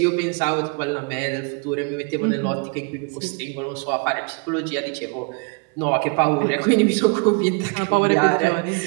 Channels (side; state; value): left; quieter; 35.2 dB